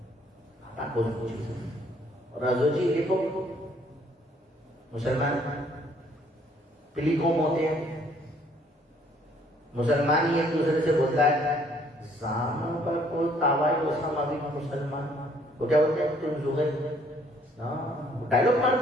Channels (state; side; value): normal; both; correlation 0.63